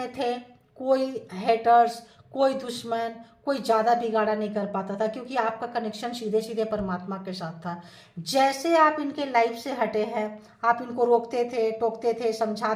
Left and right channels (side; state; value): both; identical; correlation 1.00